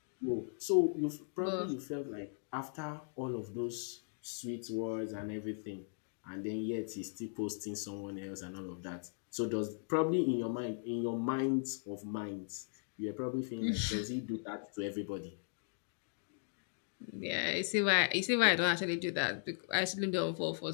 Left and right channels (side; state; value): right; silent; digital silence